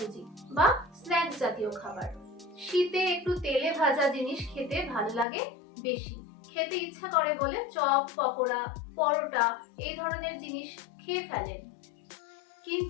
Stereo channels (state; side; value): drops out; right; at 5.2 s